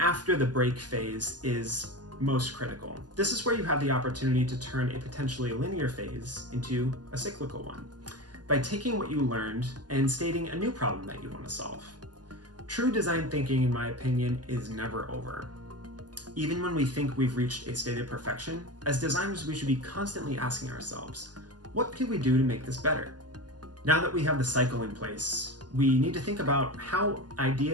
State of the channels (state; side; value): late; left; 0.70 ms